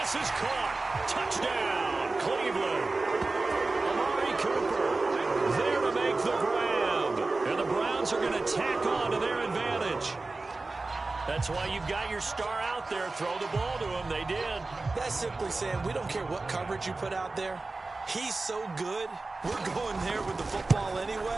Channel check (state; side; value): quieter; left; 3.4 dB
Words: is caught. Touchdown, Cleveland. Amari Cooper there to make the grab. And the Browns are going to tack on to their advantage. That's why you've got your star out there. Throw the ball to him. They did. That's simply saying we don't care what coverage you put out there. He's so good, we're going there with the football